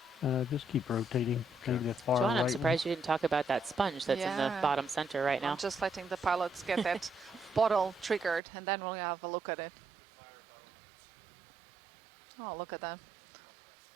Just keep rotating. Maybe that far John, right I'm one. surprised you didn't talk about that sponge that's in the Yeah. bottom center right now. I'm just letting the pilots get that bottle triggered, and then we'll have a look at it. Oh, look at that.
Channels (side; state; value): left; drops out; at 8.4 s